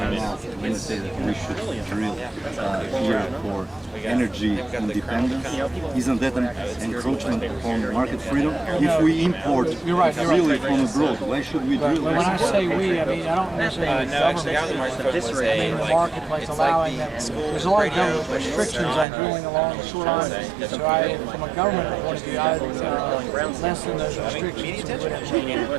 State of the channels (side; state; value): left; drops out; at 19.1 s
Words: when you say that we should drill here for energy independence, isn't that an encroachment on market freedom? If we import freely from abroad, why should we drill? But when I say we, I mean I don't necessarily mean the government. I mean the marketplace allowing them. There's a lot of government restrictions on drilling along the shoreline. So from a government point of view, I would lessen those restrictions.